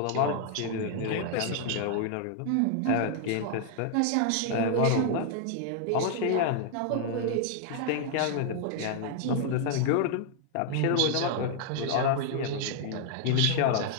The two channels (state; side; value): different; both; correlation 0.00